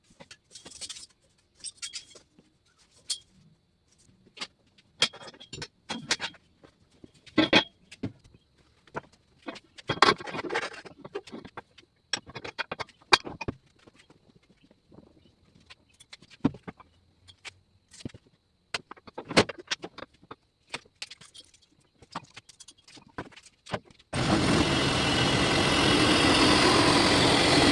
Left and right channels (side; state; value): both; identical; correlation 1.00